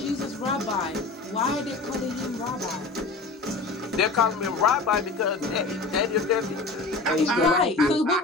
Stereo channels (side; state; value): right; quieter; 3.7 dB